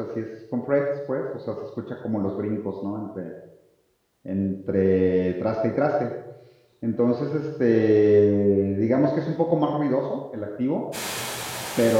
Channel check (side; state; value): both; identical; correlation 1.00